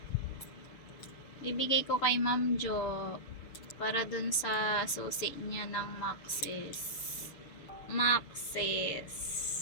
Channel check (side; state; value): right; late; 7.0 ms